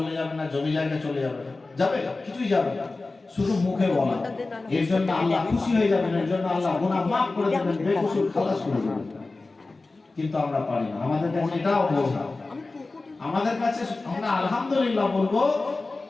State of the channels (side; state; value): right; quieter; 3.4 dB